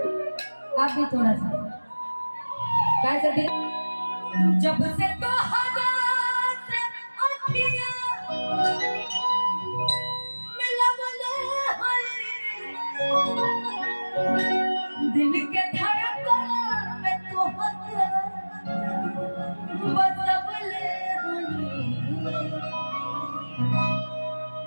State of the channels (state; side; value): inverted; both; correlation -1.00